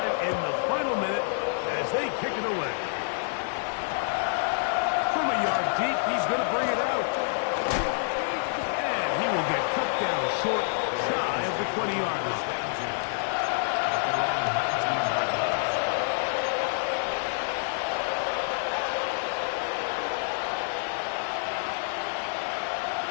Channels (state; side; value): silent; right; digital silence